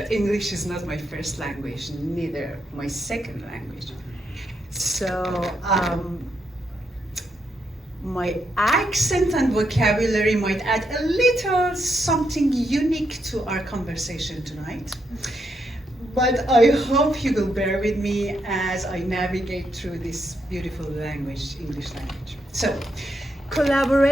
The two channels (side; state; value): both; normal; correlation 0.80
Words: English is not my first language, neither my second language. So my accent and vocabulary might add a little something unique to our conversation tonight. But I hope you will bear with me as I navigate through this beautiful language, English language. So,